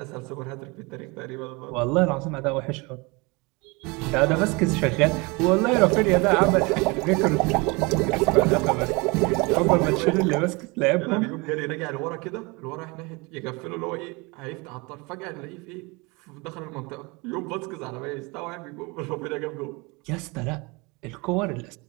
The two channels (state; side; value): quieter; left; 27.0 dB